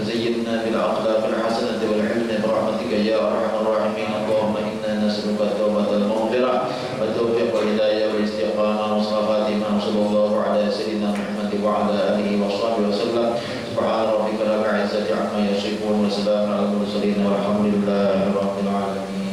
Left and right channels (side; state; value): both; identical; correlation 1.00